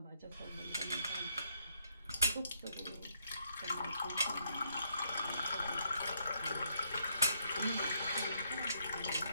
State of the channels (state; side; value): inverted; both; correlation -0.71